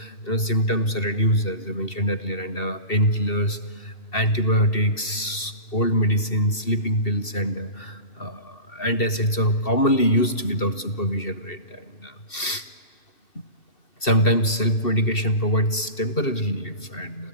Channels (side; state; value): right; late; 2.7 ms